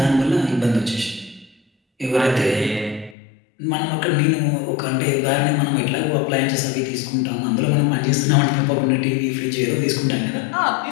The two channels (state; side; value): drops out; right; at 3.2 s